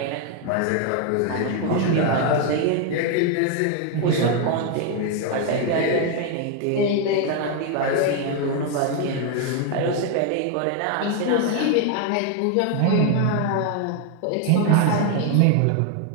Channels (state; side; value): different; both; correlation 0.01